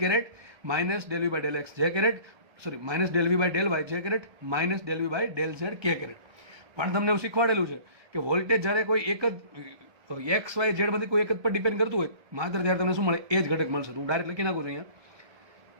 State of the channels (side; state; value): left; late; 1.2 ms